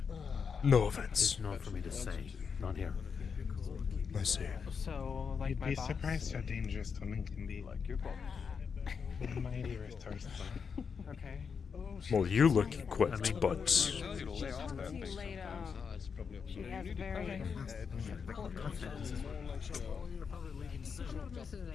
No offense. it's not for me to say. Not here. I see. So, like You'd my be boss. surprised how dangerous women can be. Like your boss. My ear is thirsty. Okay. Well, you look equipped, but Too late, She has very important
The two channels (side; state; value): right; quieter; 6.1 dB